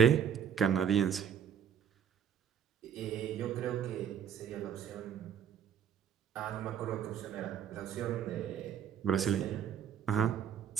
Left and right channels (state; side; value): quieter; left; 8.4 dB